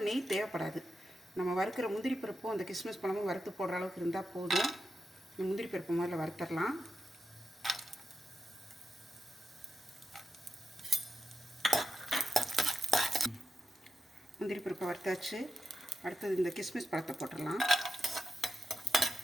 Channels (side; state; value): both; normal; correlation 0.87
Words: நெய் தேவைப்படாது. நம்ம வறுக்கிற முந்திரி பருப்பும் அந்த கிஸ்மிஸ் பழமும் வறுத்து போடுற அளவுக்கு இருந்தால் போதும். முந்திரி பருப்பு முதல்ல வறுத்துடலாம். முந்திரி பருப்பை வறுத்தாச்சு. அடுத்தது இந்த கிஸ்மிஸ் பழத்தை போட்டுடலாம்.